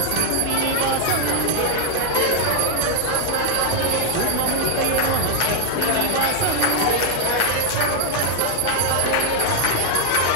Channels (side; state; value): both; different; correlation 0.00